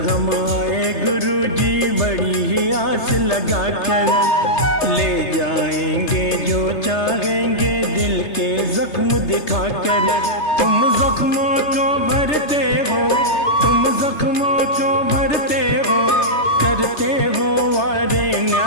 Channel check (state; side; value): late; right; 3.3 ms